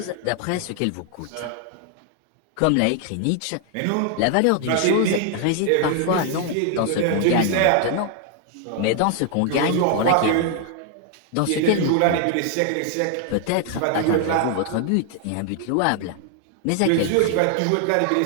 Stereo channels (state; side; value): different; both; correlation 0.00